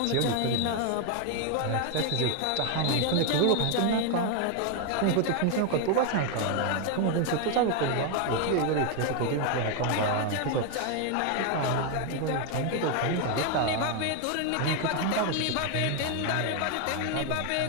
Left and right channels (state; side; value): different; both; correlation 0.01